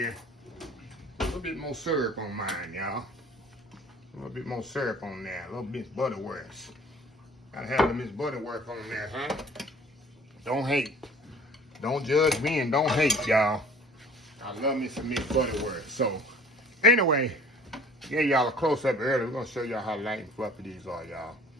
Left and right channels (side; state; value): both; normal; correlation 0.49